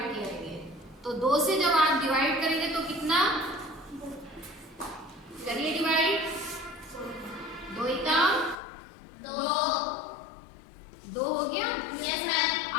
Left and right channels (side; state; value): right; drops out; at 8.6 s